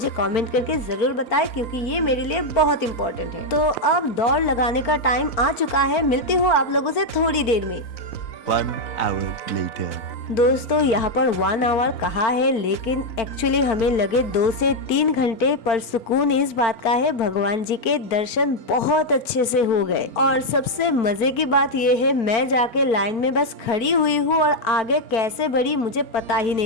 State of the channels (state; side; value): late; right; 4.4 ms